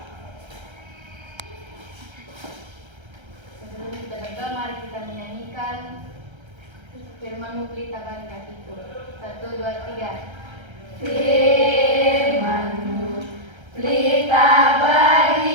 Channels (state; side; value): late; left; 1.3 ms